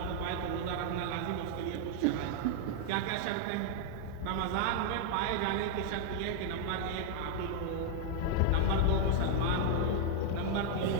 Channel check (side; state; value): both; different; correlation 0.00